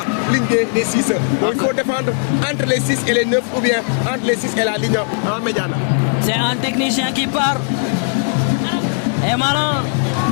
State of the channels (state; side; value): silent; right; 66 dB below the other